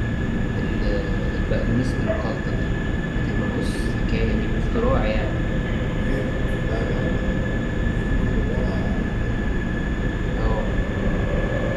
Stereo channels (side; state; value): both; identical; correlation 1.00